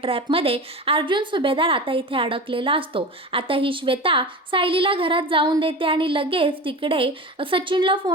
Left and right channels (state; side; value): normal; both; correlation 0.30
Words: अर्जुन सुभेदार आता इथे अडकलेला असतो. आता ही श्वेता सायलीला घरात जाऊन देते आणि लगेच तिकडे सचिनला